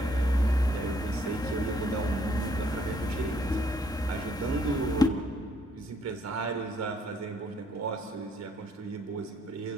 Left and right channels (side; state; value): both; normal; correlation 0.67